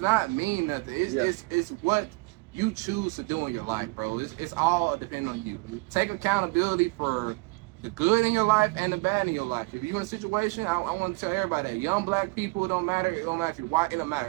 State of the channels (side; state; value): left; quieter; 28.6 dB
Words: mean nothing. It's what you choose to do in your life, bro. It's all depending on you. Take accountability for the good in your life and the bad in your life. If you're in a situation, I want to tell everybody that young black people, it don't matter if you're white, it don't